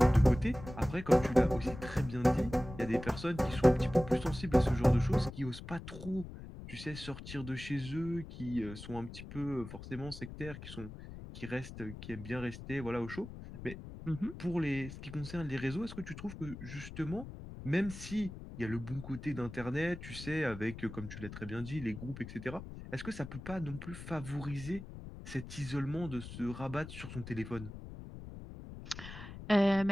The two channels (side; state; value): left; noise; rumble, 12 dB below the sound